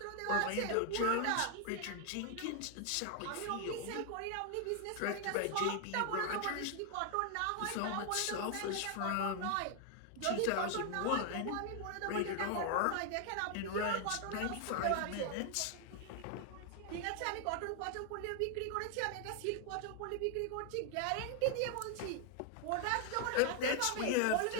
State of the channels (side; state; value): both; different; correlation 0.00